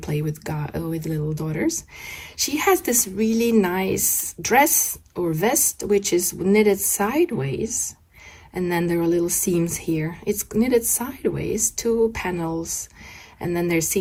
with little daughters. She has this really nice dress or vest, which is knitted sideways. And then there are little seams here. It's knitted sideways, 2 panels, and then they're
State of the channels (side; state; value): both; identical; correlation 1.00